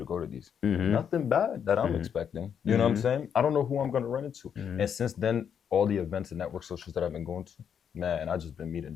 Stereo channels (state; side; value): quieter; right; 7.9 dB